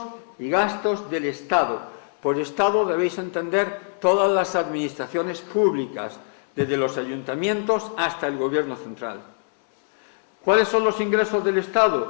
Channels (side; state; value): right; silent; 63 dB below the other